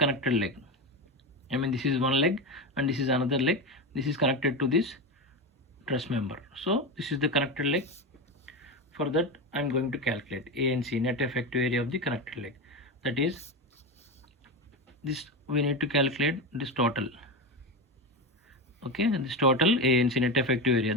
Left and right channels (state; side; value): normal; both; correlation 0.17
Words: leg. This is one leg and this is another leg. This is connected to this truss member. So this is the connected leg. For that I am going to calculate ANC, net effective area of the connected leg. That is, this we need to calculate this total. Okay, this total ANC, net effective area,